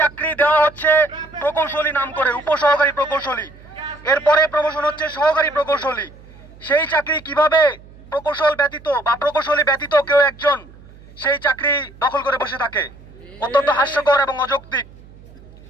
চাকরি দেওয়া হচ্ছে প্রকৌশলী নাম করে, উপসহকারী প্রকৌশলী, এরপরে প্রমোশন হচ্ছে সহকারী প্রকৌশলী, সেই চাকরি কিভাবে প্রকৌশল ব্যতীত বা প্রকৌশলী ব্যতীত কেউ একজন সেই চাকরি দখল করে বসে থাকে? অত্যন্ত হাস্যকর এবং অযৌক্তিক।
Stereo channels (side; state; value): right; noise; hum, 22 dB below the sound